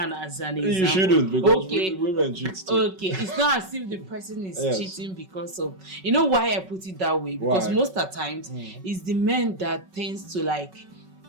as an example. You shouldn't, because Okay. women cheat too. Okay, it's not as if the person is Yes. cheating because of, why I put it that way, because Why? most of the times it's the men that tends to like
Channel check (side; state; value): left; late; 5.3 ms